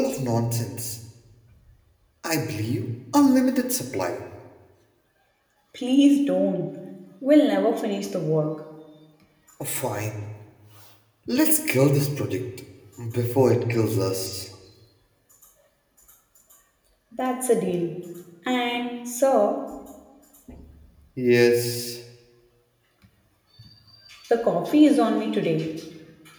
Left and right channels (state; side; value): identical; both; correlation 1.00